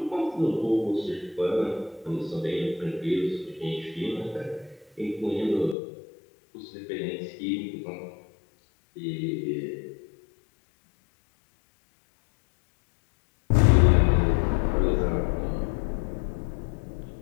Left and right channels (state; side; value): drops out; right; at 5.8 s